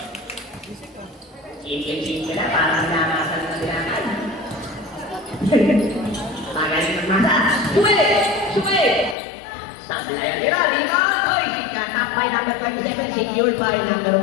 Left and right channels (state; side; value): drops out; right; at 9.2 s